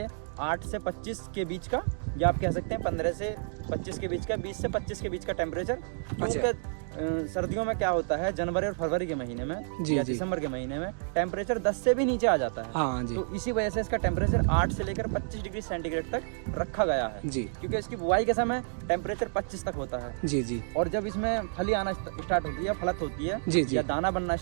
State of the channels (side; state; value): left; silent; 58 dB below the other